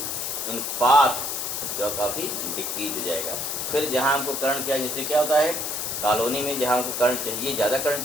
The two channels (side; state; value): left; noise; hiss, 2 dB below the sound